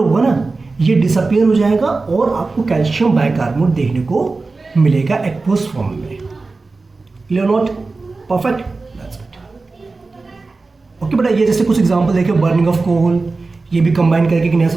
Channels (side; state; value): left; quieter; 3.8 dB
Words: ना ये डिसअपियर हो जाएगा और आपको कैल्शियम बाइकार्बोनेट देखने को मिलेगा एक्वस फॉर्म में। Clear not, perfect, that's good. Okay बेटा, ये जैसे कुछ एग्जांपल देखे, बर्निंग ऑफ कोल, ये भी कंबाइन करके एक नया